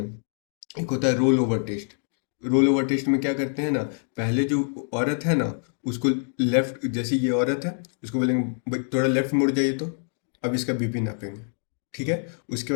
एक होता है roll over test. Roll over test में क्या करते हैं ना, पहले जो औरत है ना उसको लेफ्ट, जैसे ये औरत है उसको बोलेंगे "भाई, थोड़ा लेफ्ट मुड़ जाइए तो अब इसका बीपी नापेंगे", ठीक है। उसके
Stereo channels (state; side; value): silent; right; 56 dB below the other